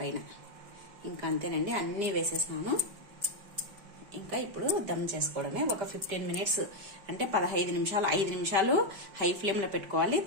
ఇంకా అంతేనండి, అన్నీ వేసేసినాను. ఇంకా ఇప్పుడు దమ్ చేసుకోవడమే. ఒక 15 మినిట్స్ అంటే 15 నిమిషాలు, 5 నిమిషాలు హై ఫ్లేమ్లో పెట్టుకోవాలి.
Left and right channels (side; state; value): left; late; 5.0 ms